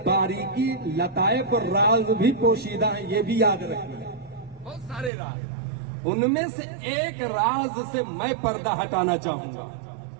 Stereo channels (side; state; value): left; drops out; at 5.1 s